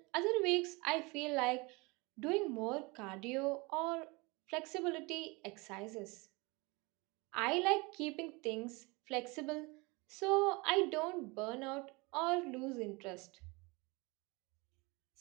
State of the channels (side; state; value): left; quieter; 26.3 dB